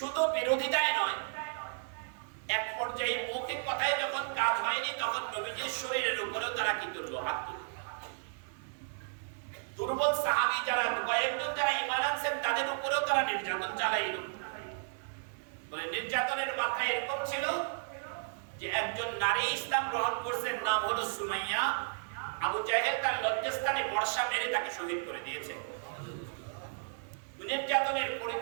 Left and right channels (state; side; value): silent; left; digital silence